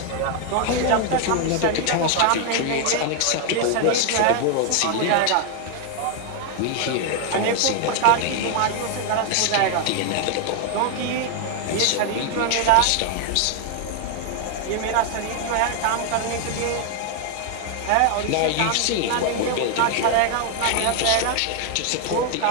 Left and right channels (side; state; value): both; different; correlation 0.00